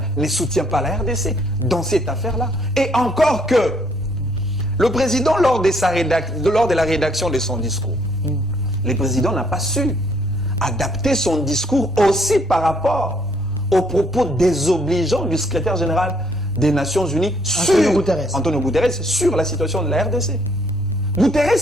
ne soutient pas la RDC dans cette affaire-là. Et encore que le président, lors de la rédaction de son discours, le président n'a pas su adapter son discours aussi par rapport aux propos désobligeants du secrétaire général des Nations Unies Antonio Guterres sur la situation de la RDC.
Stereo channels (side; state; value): both; normal; correlation 0.67